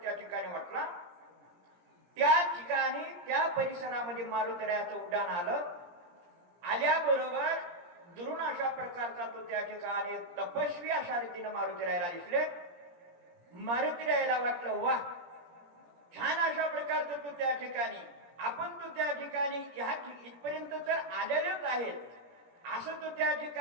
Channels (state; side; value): late; left; 17 ms